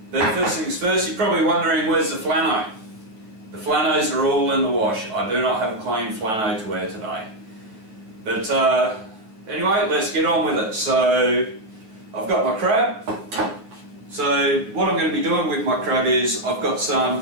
But first things first, you're probably wondering where's the flano? The flanos are all in the wash. I do not have a clean flano to wear today. But anyway, let's get on with it. So I've got my crab. So what I'm going to be doing with my crab is I've got some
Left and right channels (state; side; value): late; left; 9.2 ms